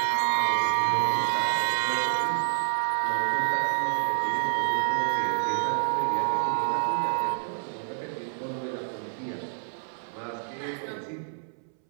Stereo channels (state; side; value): silent; left; 60 dB below the other